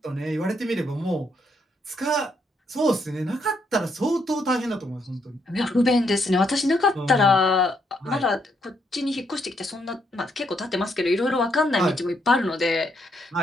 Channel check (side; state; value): both; normal; correlation 0.75